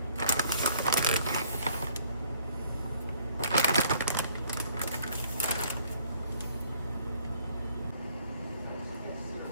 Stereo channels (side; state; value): both; inverted; correlation -0.61